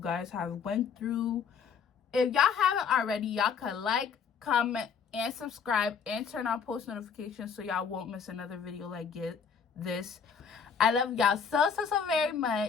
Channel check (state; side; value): quieter; right; 6.4 dB